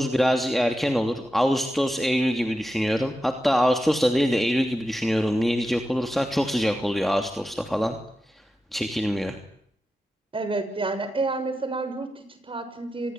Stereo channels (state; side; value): normal; both; correlation 0.90